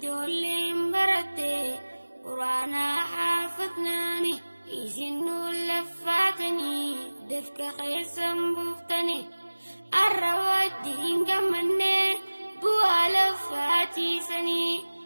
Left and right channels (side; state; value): both; inverted; correlation -1.00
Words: baratte qur'aanaa haafadnaani isin nuun laffaatanii dafqa keessan buuftanii. Har'a wajjin gammannee bu'aa laffaatiisanii.